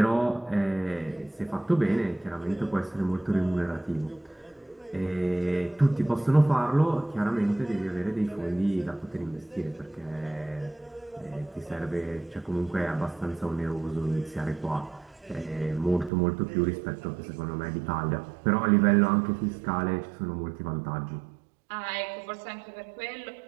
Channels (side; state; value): left; drops out; at 16.1 s